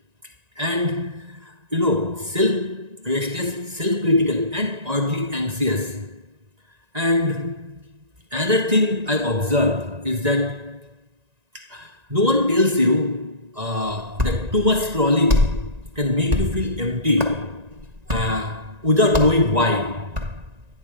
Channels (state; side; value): late; left; 1.9 ms